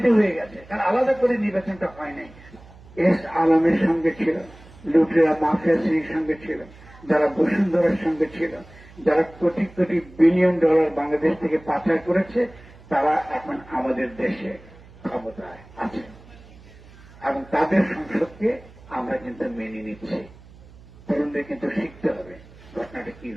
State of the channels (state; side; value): noise; right; hum, 22 dB below the sound